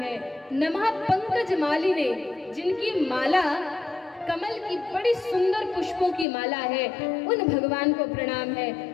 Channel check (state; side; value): drops out; right; at 6.2 s